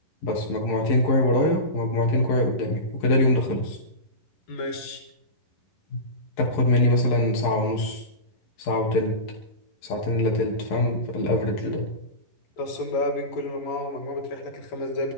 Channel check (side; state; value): right; late; 11 ms